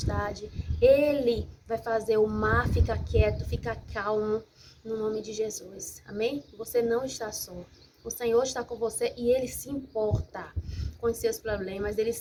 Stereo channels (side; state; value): both; identical; correlation 1.00